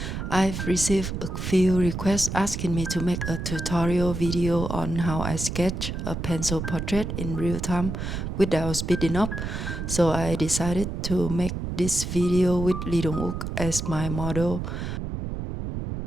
I've received a few requests asking me to make a tutorial video on how I sketch a pencil portrait in real time without speeding up. So I decided to make this video with Lee Dong Wook as my model.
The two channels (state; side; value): noise; right; rumble, 4 dB below the sound